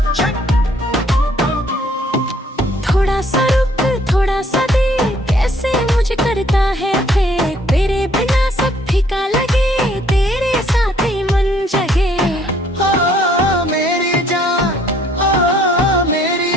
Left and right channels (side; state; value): both; normal; correlation 0.63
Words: थोड़ा सा रुक थोड़ा सा दे, कैसे मुझे करता है फेंक, तेरे बिना सब फीका लगे, तेरे साथ ही मन जगे। ओ मेरी जान, ओ मेरी